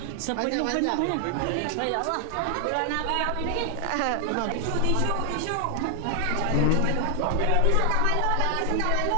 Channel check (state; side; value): different; both; correlation 0.00